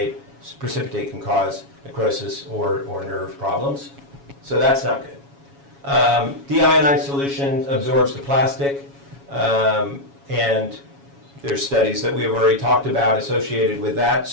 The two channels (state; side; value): late; left; 7.2 ms